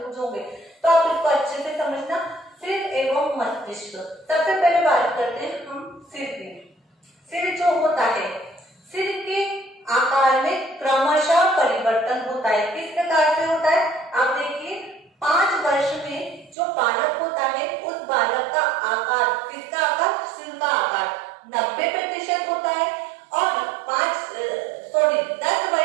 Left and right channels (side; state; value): left; drops out; at 16.6 s